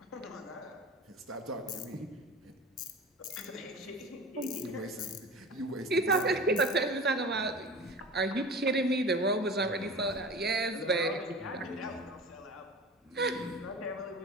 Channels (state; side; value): normal; both; correlation 0.36